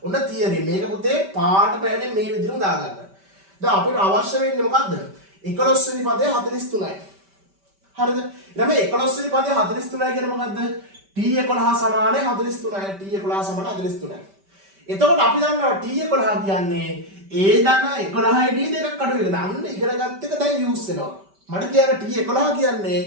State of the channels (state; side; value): late; left; 5.1 ms